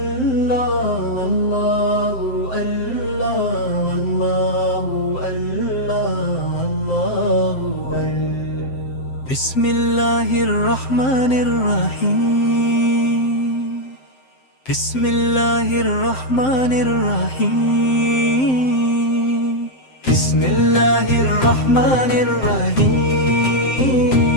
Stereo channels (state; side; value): late; right; 7.7 ms